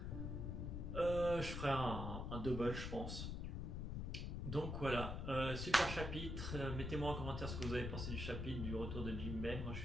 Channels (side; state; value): left; noise; rumble, 3 dB below the sound